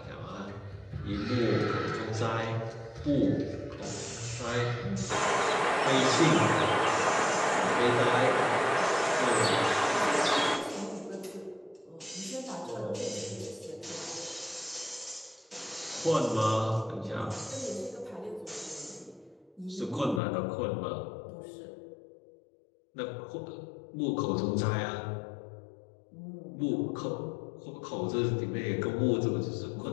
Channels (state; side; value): drops out; right; at 20.2 s